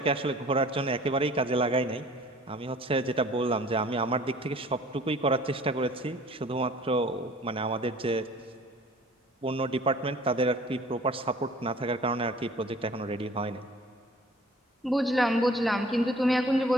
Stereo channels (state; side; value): normal; both; correlation 0.50